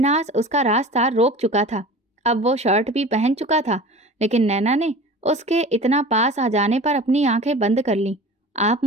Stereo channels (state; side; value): normal; both; correlation 0.38